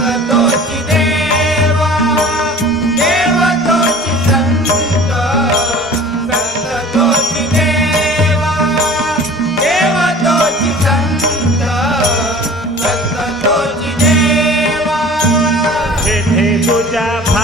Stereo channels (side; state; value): both; normal; correlation 0.44